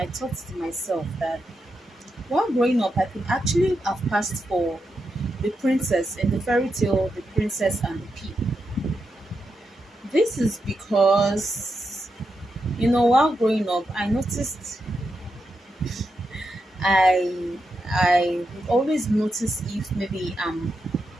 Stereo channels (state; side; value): normal; both; correlation 0.86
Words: thought to myself that while growing up I could actually have passed for the princess in the fairy tale The Princess and the Pea. This is because while growing up I noticed I would always notice if maybe I'm